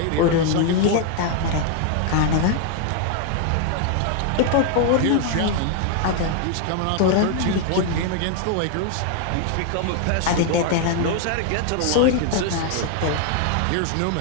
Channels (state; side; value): different; both; correlation 0.00